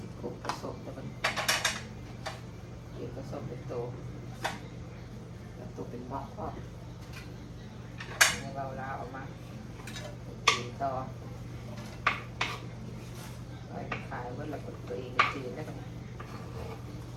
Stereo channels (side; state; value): both; identical; correlation 1.00